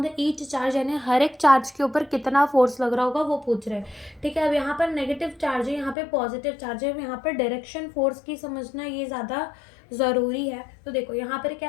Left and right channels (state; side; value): drops out; right; at 6.0 s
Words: द ईच चार्ज, यानी हर एक चार्ज के ऊपर कितना फोर्स लग रहा होगा वो पूछ रहे हैं, ठीक है। अब यहाँ पर नेगेटिव चार्ज है, यहाँ पे पॉजिटिव चार्ज है। यहाँ पर डायरेक्शन फोर्स की समझना ये ज़्यादा ज़रूरी है। तो देखो, यहाँ पर क्या